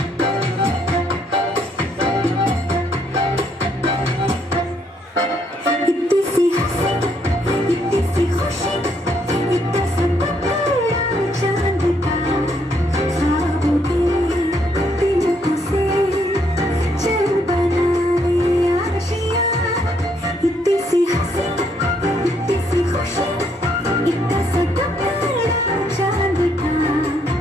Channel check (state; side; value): normal; both; correlation 0.71